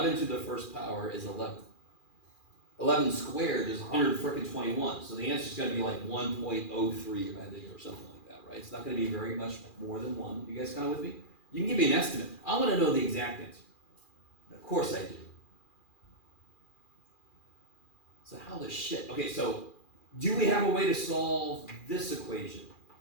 to the 1st power is 11. 11 squared is 121. So the answer is going to be like 1.03, I think, or something like that, right? It's not going to be very much more than 1. You guys kind of with me? You can give me an estimate. I want to know the exact answer. Of course I do. So how the shit? Okay, so do we have a way to solve this equation?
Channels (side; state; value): right; late; 2.4 ms